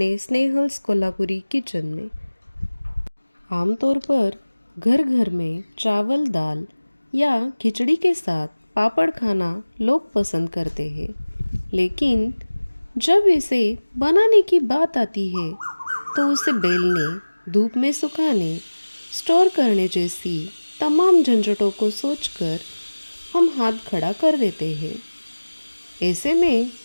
स्नेहल्स कोल्हापुरी किचन में। आमतौर पर घर घर में चावल दाल या खिचड़ी के साथ पापड़ खाना लोग पसंद करते हैं, लेकिन जब इसे बनाने की बात आती है तो उसे बेलने, धूप में सुखाने, स्टोर करने जैसी तमाम झंझटों को सोचकर हम हाथ खड़ा कर देते हैं। ऐसे में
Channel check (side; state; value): both; inverted; correlation -1.00